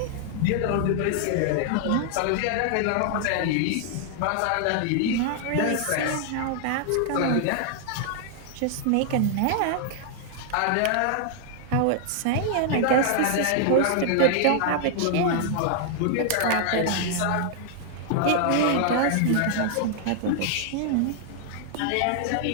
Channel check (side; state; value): both; different; correlation -0.01